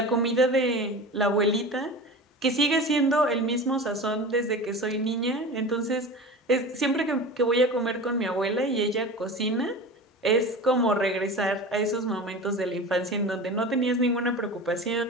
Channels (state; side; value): normal; both; correlation 0.32